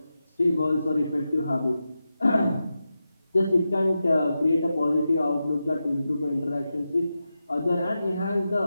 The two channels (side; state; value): both; inverted; correlation -0.90